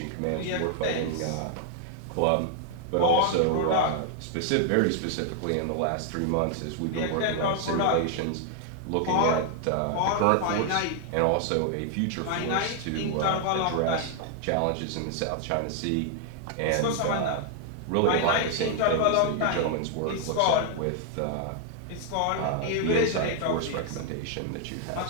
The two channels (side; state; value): both; different; correlation 0.00